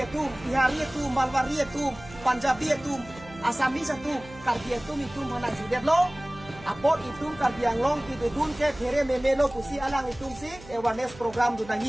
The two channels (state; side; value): noise; right; hum, 19 dB below the sound